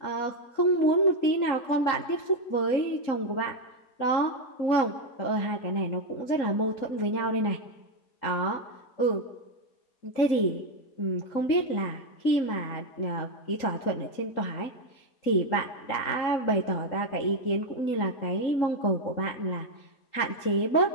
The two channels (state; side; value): late; right; 3.8 ms